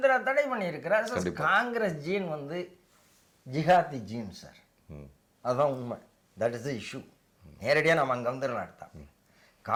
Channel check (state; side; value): identical; both; correlation 1.00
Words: தடை பண்ணியிருக்கிறார். காங்கிரஸ் ஜீன் வந்து ஜிஹாதி ஜீன் சார், அதுதான் உண்மை. That is the issue. நேரடியாக நம்ம அங்கே வந்துடலாம். எடுத்தோம்